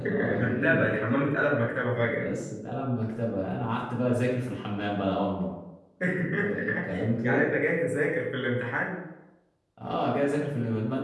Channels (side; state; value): both; identical; correlation 1.00